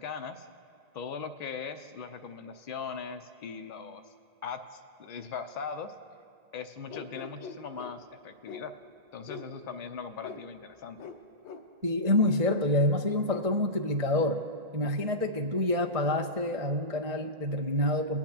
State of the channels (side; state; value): left; late; 1.9 ms